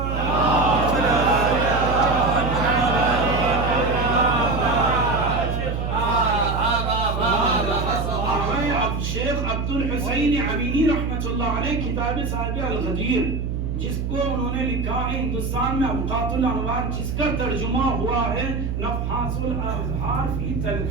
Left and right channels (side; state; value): right; noise; hum, 2 dB below the sound